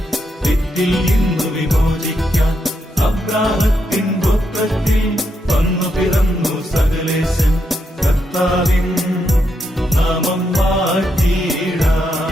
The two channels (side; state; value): both; normal; correlation 0.81